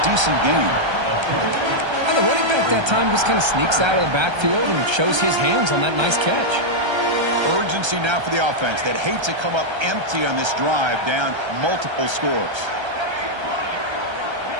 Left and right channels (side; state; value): left; late; 1.3 ms